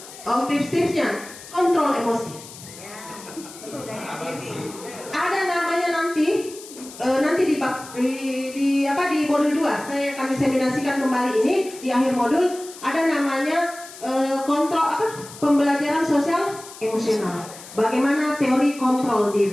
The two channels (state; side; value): noise; left; hiss, 16 dB below the sound